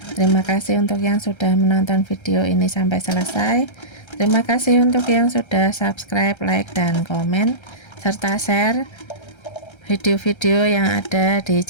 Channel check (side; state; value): right; late; 1.3 ms